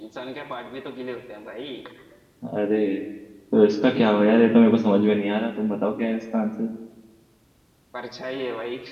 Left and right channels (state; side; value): identical; both; correlation 1.00